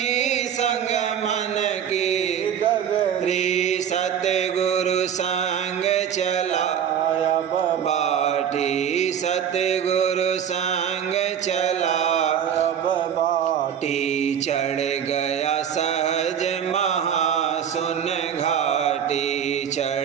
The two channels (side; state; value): left; quieter; 8.7 dB